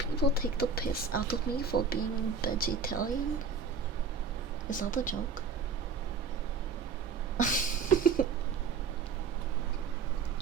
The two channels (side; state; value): left; quieter; 5.2 dB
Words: take the piss out of me for being vegetarian? Is that a joke?